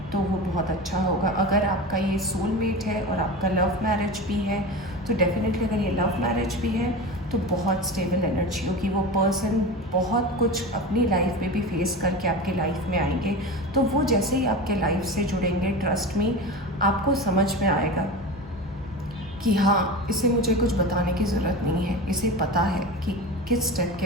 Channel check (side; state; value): both; normal; correlation 0.28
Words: तो वो बहुत अच्छा होगा। अगर आपका ये सोलमेट है और आपका लव मैरिज भी है तो डेफिनेटली, अगर ये लव मैरिज भी है तो बहुत स्टेबल एनर्जी होगी। वो पर्सन बहुत कुछ अपनी लाइफ में भी फेस करके आपके लाइफ में आएंगे। तो वो जैसे ही आपके लाइफ से जुड़ेंगे, ट्रस्ट में आपको समझ में आएगा कि हाँ, इसे मुझे कुछ बताने की ज़रूरत नहीं है, इसे पता है कि किस स्टेप